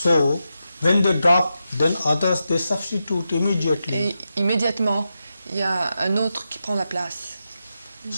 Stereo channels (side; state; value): both; inverted; correlation -0.88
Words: when they drop, then others they substitute immediately. Et immédiatement, il y a un autre qui prend la place.